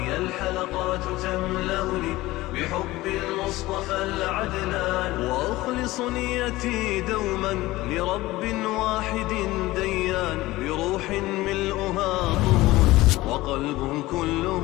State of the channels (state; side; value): quieter; right; 18.3 dB